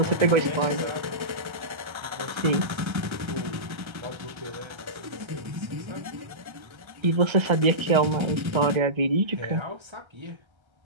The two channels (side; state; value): left; late; 1.3 ms